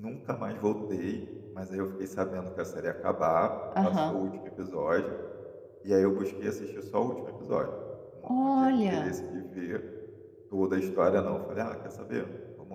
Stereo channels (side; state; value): both; identical; correlation 1.00